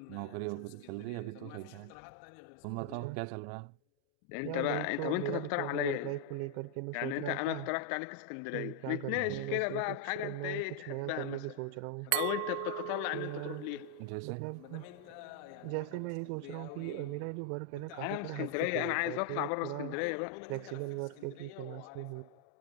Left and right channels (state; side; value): different; both; correlation 0.00